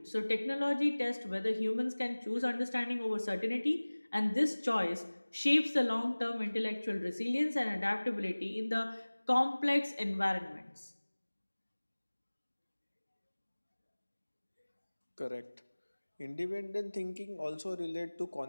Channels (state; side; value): inverted; both; correlation -1.00